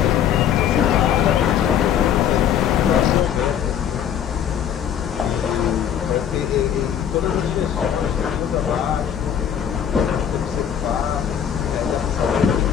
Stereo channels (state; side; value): quieter; right; 9.1 dB